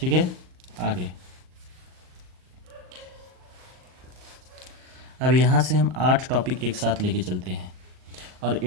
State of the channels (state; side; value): late; left; 38 ms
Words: है, आगे अब यहाँ से हम 8 टॉपिक एक साथ लेके चलते हैं और